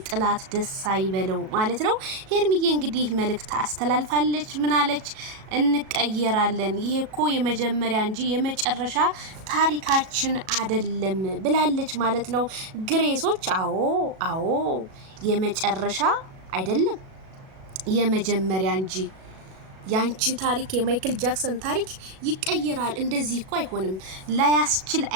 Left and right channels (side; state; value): left; late; 37 ms